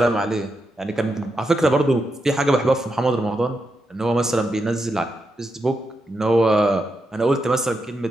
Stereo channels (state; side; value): normal; both; correlation 0.85